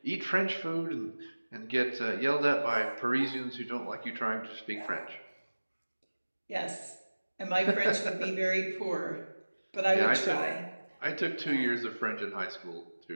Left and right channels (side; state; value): both; inverted; correlation -1.00